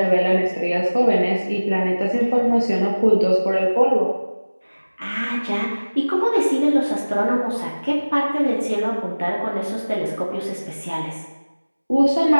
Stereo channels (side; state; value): both; inverted; correlation -1.00